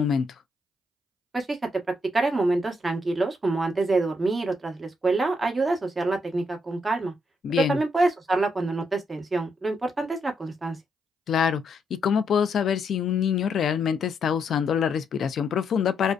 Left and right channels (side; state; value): both; normal; correlation 0.77